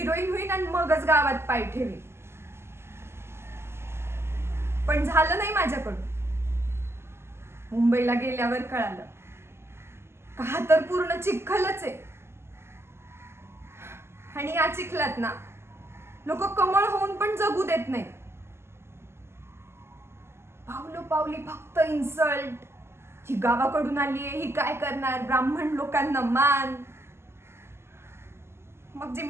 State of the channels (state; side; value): late; left; 0.12 ms